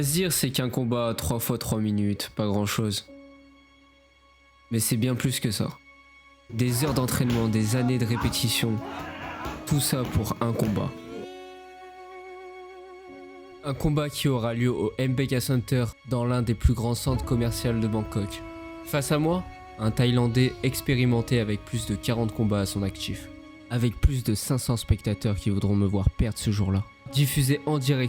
se dire c'est qu'un combat 3 fois 3 minutes, pas grand chose. Mais c'est bien plus que ça. Des heures d'entraînement, des années de répétition, tout ça pour un combat. Un combat qui aura lieu au MBK Center dans l'un des plus grands centres commerciaux de Bangkok. Face à moi, un Thaïlandais expérimenté avec plus de 40 combats à son actif. Avec plus de 500 spectateurs qui voudront me voir perdre ce jour-là. Diffusé en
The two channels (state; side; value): identical; both; correlation 1.00